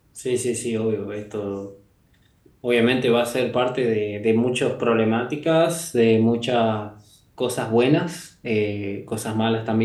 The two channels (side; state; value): both; identical; correlation 1.00